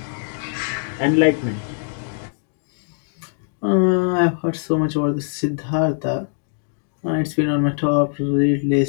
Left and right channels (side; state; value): right; silent; digital silence